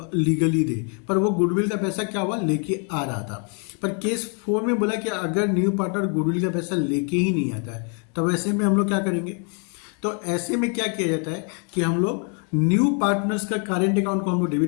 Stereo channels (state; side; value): quieter; right; 39.4 dB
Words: लीगली दे, पर वो गुडविल का पैसा क्या हुआ लेके आ रहा था। पर केस 4 में बोला कि अगर न्यू पार्टनर गुडविल का पैसा लेके ही नहीं आता है तब ऐसे में हम लोग क्या करेंगे। तो ऐसे में क्या किया जाता है कि हम लोग न्यू पार्टनर्स का करेंट अकाउंट को हम लोग